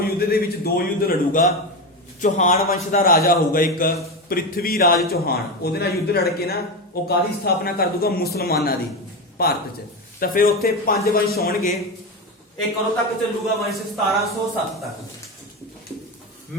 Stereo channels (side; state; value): both; normal; correlation 0.17